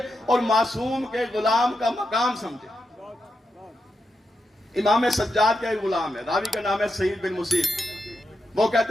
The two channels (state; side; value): normal; both; correlation 0.86